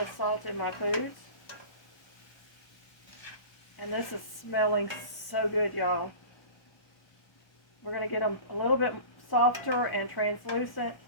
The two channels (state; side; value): late; right; 1.0 ms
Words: of salt in my foods. And this is smelling so good, y'all. We're going to get them a little bit softer and translucent.